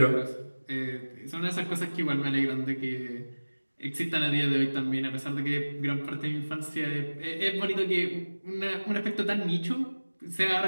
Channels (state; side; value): inverted; both; correlation -1.00